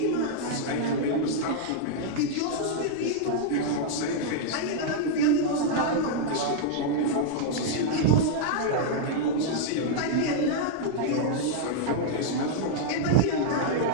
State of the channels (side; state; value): both; different; correlation -0.01